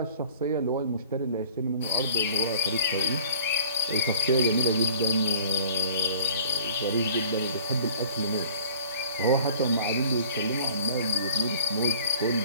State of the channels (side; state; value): both; inverted; correlation -0.50